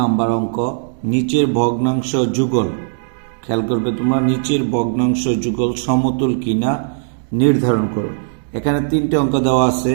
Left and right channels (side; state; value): left; silent; 68 dB below the other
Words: অঙ্ক, নিচের ভগ্নাংশ যুগল। খেয়াল করবে তোমরা, নিচের ভগ্নাংশ যুগল সমতুল কিনা নির্ধারণ করো। এখানে তিনটে অঙ্ক দেওয়া আছে।